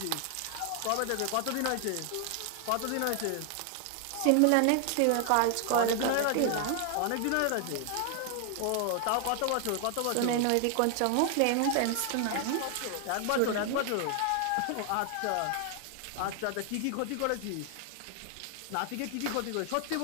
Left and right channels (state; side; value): different; both; correlation 0.00